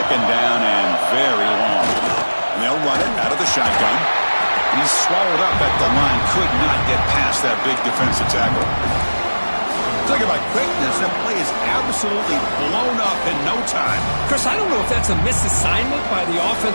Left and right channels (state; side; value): inverted; both; correlation -1.00